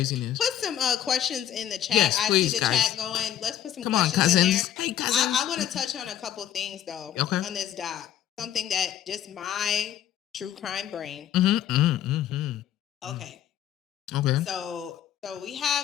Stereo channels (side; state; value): right; quieter; 11.0 dB